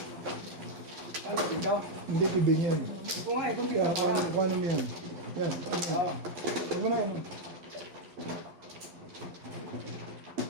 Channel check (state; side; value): late; left; 11 ms